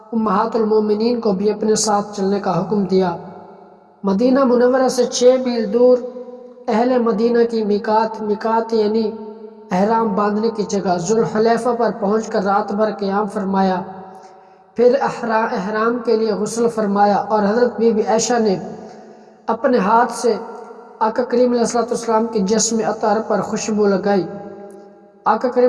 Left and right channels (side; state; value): both; identical; correlation 1.00